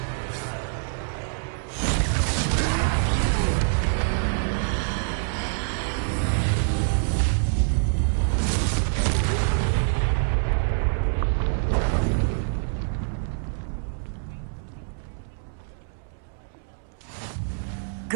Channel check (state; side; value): silent; left; 61 dB below the other